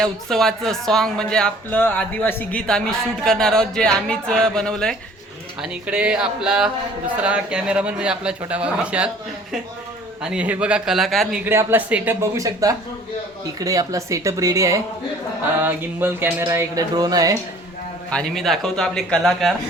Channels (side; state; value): both; normal; correlation 0.52